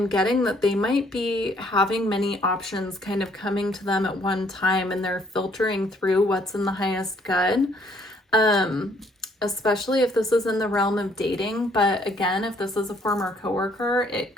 getting that they might be having many options kind of coming to them at one time, and they're filtering through what's in the highest good. Especially if this is in the realm of dating. But again, if this is a former coworker, it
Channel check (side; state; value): both; normal; correlation 0.64